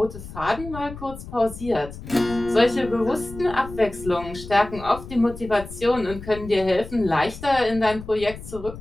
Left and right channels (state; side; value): noise; left; rumble, 13 dB below the sound